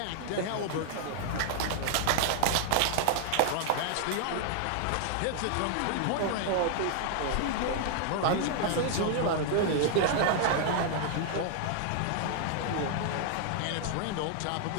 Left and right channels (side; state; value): both; different; correlation 0.00